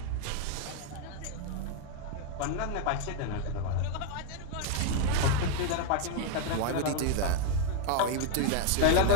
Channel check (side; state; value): both; different; correlation 0.00